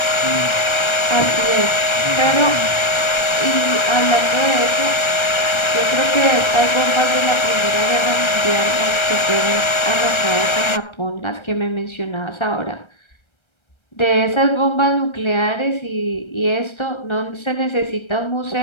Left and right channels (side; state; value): right; late; 1.3 ms